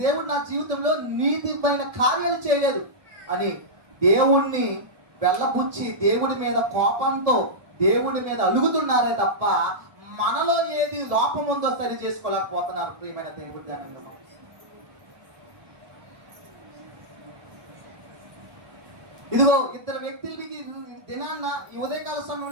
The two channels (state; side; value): late; left; 1.7 ms